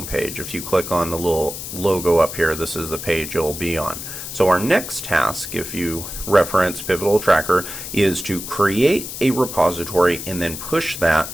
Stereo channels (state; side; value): noise; left; hiss, 8 dB below the sound